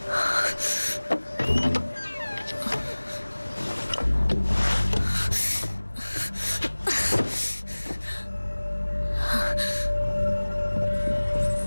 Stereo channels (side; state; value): both; inverted; correlation -1.00